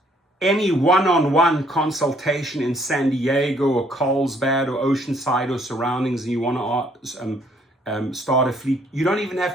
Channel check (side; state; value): both; normal; correlation 0.65